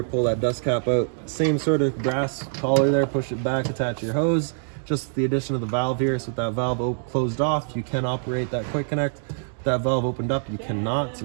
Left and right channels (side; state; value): left; silent; 62 dB below the other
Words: pull that dust cap out. Same sort of brass collar there, push it back, attach your hose. Just the addition of the valve here, so with that valve closed off, you can operate that quick connect. With that valve opened up, you cannot, so